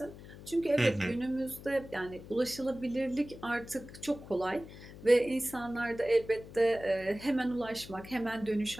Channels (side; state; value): left; noise; hum, 16 dB below the sound